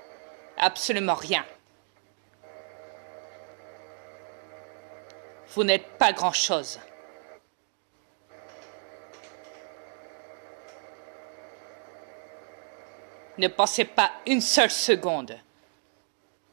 Absolument rien. Vous n'êtes pas grand-chose. Ne pensez pas une seule seconde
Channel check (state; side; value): silent; left; 57 dB below the other